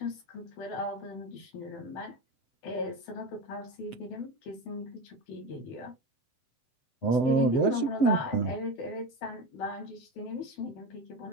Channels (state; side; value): late; right; 7.9 ms